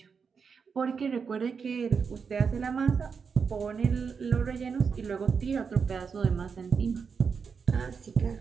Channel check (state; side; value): quieter; left; 5.9 dB